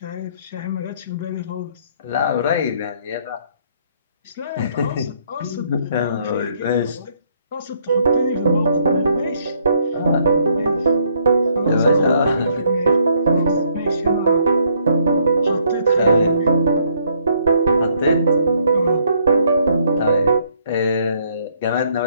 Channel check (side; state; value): both; inverted; correlation -0.68